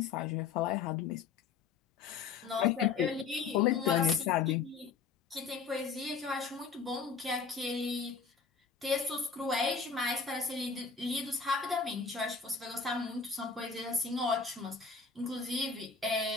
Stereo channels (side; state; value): right; quieter; 5.4 dB